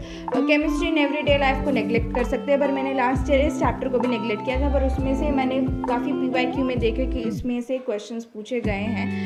Chemistry in everyday life को नेग्लेक्ट कर सकते हैं, पर मैंने लास्ट ईयर इस चैप्टर को भी नेग्लेक्ट किया था, पर उसमें से मैंने काफ़ी PYQ में देखे कि इसमें से क्वेश्चंस पूछे गए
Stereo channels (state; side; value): identical; both; correlation 1.00